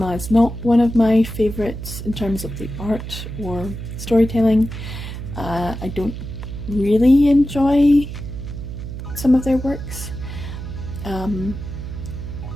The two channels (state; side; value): noise; right; hum, 8 dB below the sound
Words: is not one of my favourites in terms of the art or storytelling. I don't really enjoy some of their works,